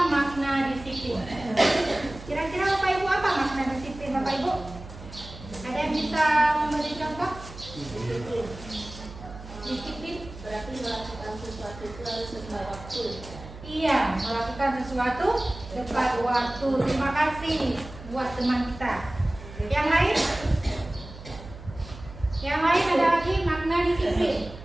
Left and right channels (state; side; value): noise; right; hum, 15 dB below the sound